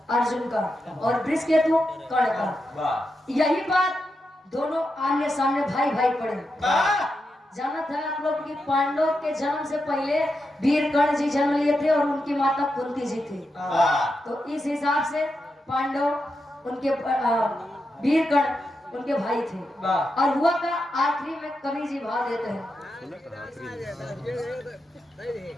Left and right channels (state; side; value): normal; both; correlation 0.86